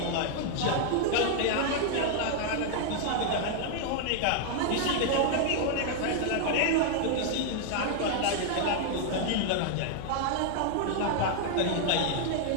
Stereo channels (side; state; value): both; different; correlation 0.00